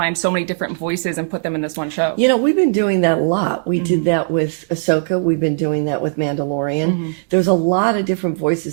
so many different voices and put them in this one show? We've been doing that a lot. We did that with Ahsoka. We've been doing that with Mandalorian. There's a lot of different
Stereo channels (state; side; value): quieter; left; 37.8 dB